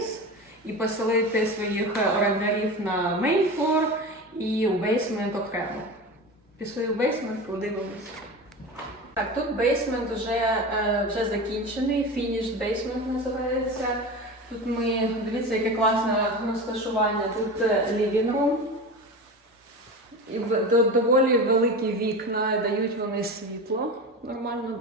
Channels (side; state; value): both; normal; correlation 0.28